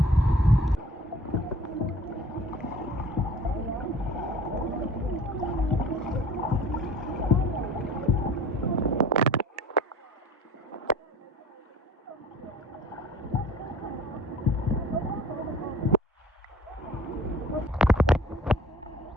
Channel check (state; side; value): normal; both; correlation 0.48